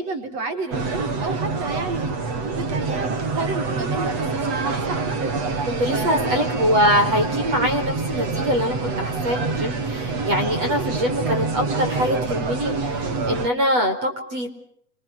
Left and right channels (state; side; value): late; left; 8.1 ms